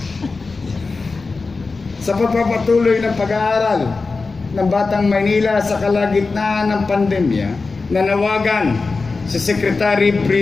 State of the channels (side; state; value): right; quieter; 4.1 dB